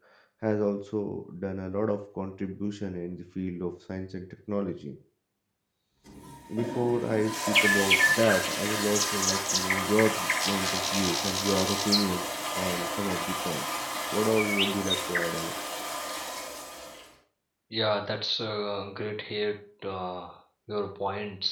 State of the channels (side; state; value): both; identical; correlation 1.00